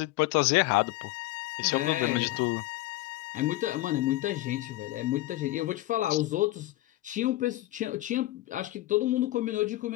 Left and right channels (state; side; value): quieter; right; 17.0 dB